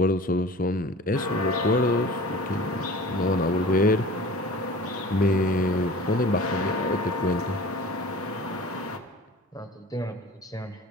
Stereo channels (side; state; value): both; normal; correlation 0.41